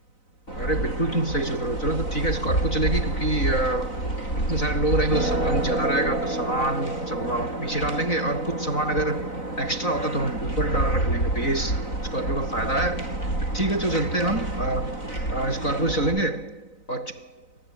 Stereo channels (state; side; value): late; right; 4.0 ms